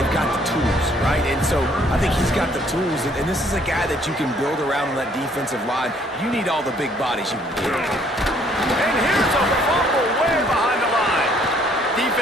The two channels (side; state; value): both; normal; correlation 0.63